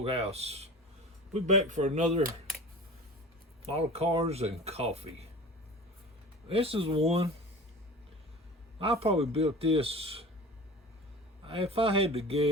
We're back for another model cars and coffee. This is one. I probably built this, if I had to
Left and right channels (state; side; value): normal; both; correlation 0.37